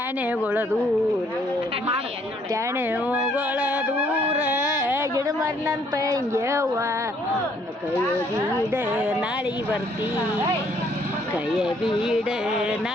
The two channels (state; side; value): normal; both; correlation 0.65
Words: ದೂರ ಟ್ಯಾಣೆಗಳ ದೂರ ಗಿಡ ಮಾರಿನಂತ ಹಿಂಗ್ಯವ್ವ ಕೈಯ ಬೀಡ ನಾಳೆಗೆ ಬರ್ತಿ ಕೈಯ ಬೀಡ